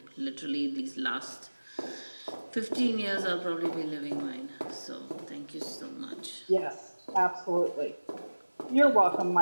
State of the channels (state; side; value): inverted; both; correlation -1.00